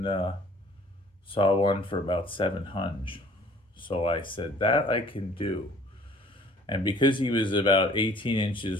saw one for about 700. So I said, that I can do. And because he was about 18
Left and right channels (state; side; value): normal; both; correlation 0.54